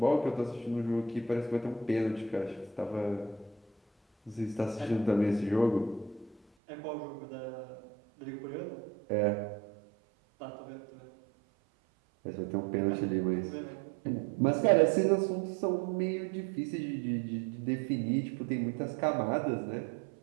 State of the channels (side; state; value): left; drops out; at 6.4 s